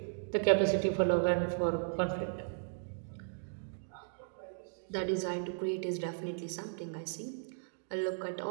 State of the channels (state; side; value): silent; left; digital silence